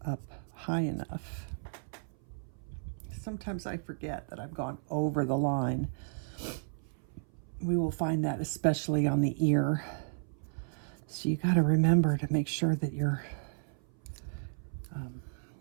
up high enough. Sometimes I forget that I've gone over the line. We will find that especially on the ear. So you got to remember to make sure that you're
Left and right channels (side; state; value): left; silent; 56 dB below the other